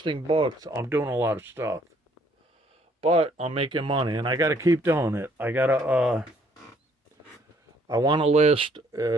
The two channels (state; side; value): normal; both; correlation 0.64